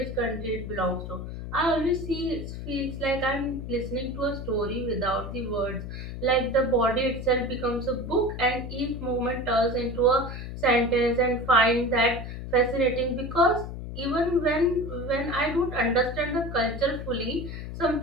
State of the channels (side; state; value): left; noise; hum, 8 dB below the sound